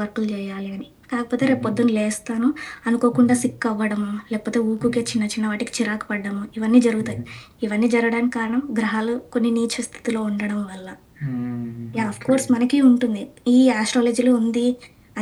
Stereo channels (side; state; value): both; identical; correlation 1.00